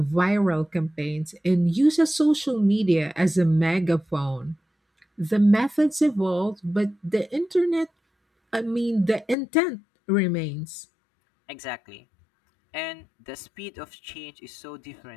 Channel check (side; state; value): right; drops out; at 9.3 s